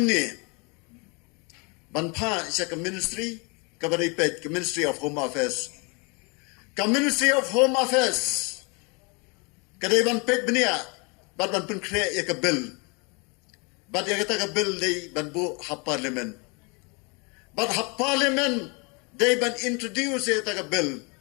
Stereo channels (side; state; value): right; quieter; 31.4 dB